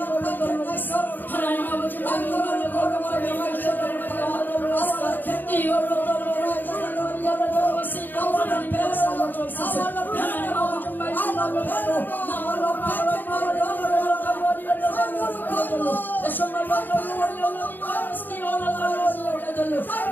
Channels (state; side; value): late; right; 0.090 ms